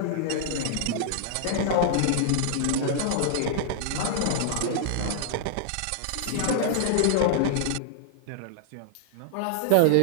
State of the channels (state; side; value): different; both; correlation -0.01